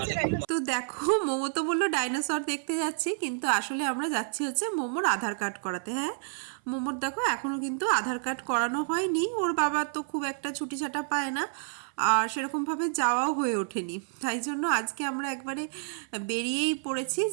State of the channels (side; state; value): left; silent; 56 dB below the other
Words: তো দেখো, মোমো তো বললো ডাইনোসর দেখতে যাচ্ছি, কিন্তু আসলে আমরা যাচ্ছি হচ্ছে মোমোর আধার কার্ড করাতে। হ্যাঁ, মোমোর দেখো এখনও কিন্তু আধার কার্ড করানো হয়নি। ওর বাবা তো খুব একটা ছুটি ছাটা পায় না, আর সেরকমভাবে যাওয়াও হয়ে ওঠেনি। তাই জন্য আজকে আমরা একবারে বেরিয়েই পড়েছি